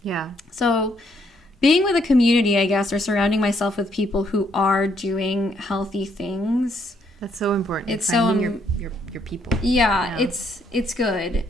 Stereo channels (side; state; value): both; normal; correlation 0.71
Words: Yeah. So being with a community, I guess, or surrounding myself with people who are doing healthy things. That's so important. It's finding your people. Yeah, it's good.